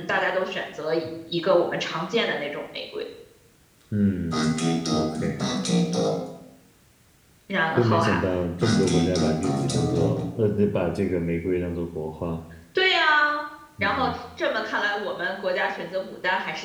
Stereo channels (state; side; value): identical; both; correlation 1.00